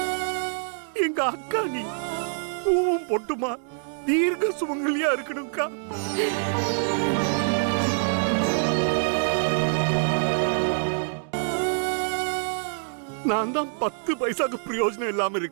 எங்க அக்கா நீ பூவும் பொட்டுமா தீர்க்க சுமங்கலியா இருக்கணும்க்கா. நான் தான் 10 பைசாக்கு பிரயோஜனம் இல்லாம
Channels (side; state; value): left; silent; digital silence